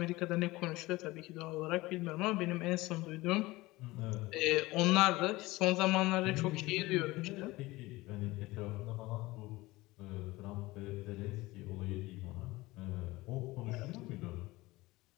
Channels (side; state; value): right; quieter; 20.1 dB